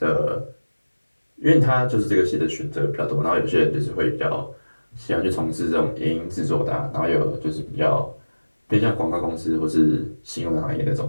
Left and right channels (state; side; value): inverted; both; correlation -1.00